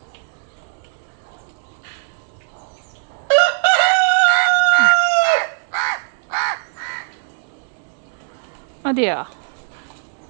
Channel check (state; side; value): silent; left; digital silence